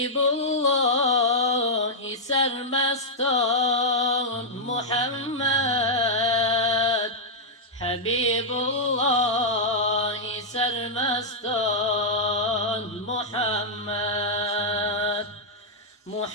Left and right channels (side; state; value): both; normal; correlation -0.06